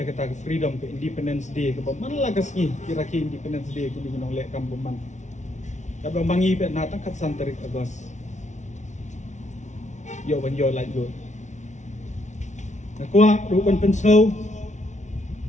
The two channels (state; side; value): late; right; 0.35 ms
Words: kita freedom ke Independence Day ke paman lagas ni kira-kira Independence Day ku kinong le kambuman. Tapi mangi pe na tang kat santarik agos yo ban yo lai yo na kwa ru ban pen snow